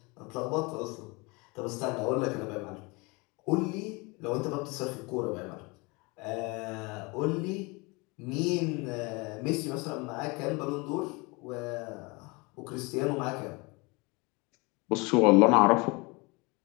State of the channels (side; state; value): right; quieter; 27.0 dB